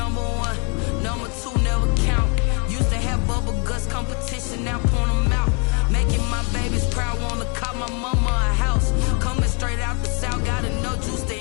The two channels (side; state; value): right; quieter; 35.8 dB